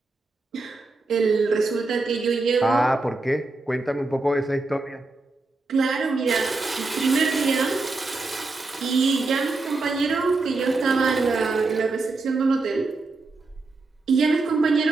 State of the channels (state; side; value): quieter; left; 3.5 dB